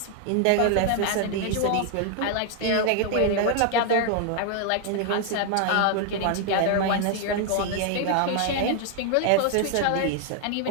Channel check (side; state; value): both; different; correlation 0.00